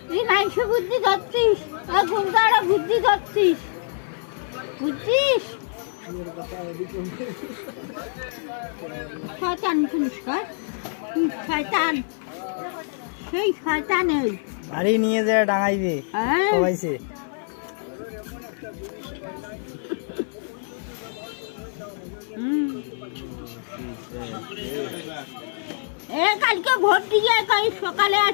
তুই মাংস বুদ্ধি ধরছিস গুন্ডারা বুদ্ধি ধরছিস বুঝছিস শয়তান শুনিস শয়তান সেই শয়তান এই বাড়ি নিয়ে যায় ডাঙাইবে সবাইছে কালকে ভোট দিয়ে কাল সকালে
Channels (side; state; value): right; silent; digital silence